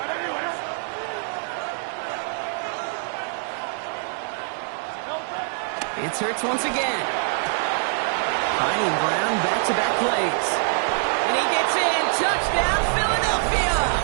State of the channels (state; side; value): silent; left; 62 dB below the other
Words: It's Hurts once again. Finding Brown back-to-back plays. And he gets in. Touchdown, Philadelphia!